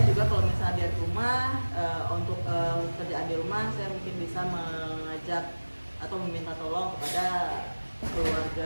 juga kalau misalnya di rumah, untuk kerjaan di rumah saya mungkin bisa mengajak atau meminta tolong kepada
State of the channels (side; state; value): both; inverted; correlation -1.00